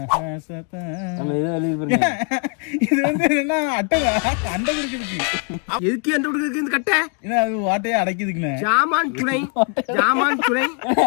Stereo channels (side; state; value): right; quieter; 36.9 dB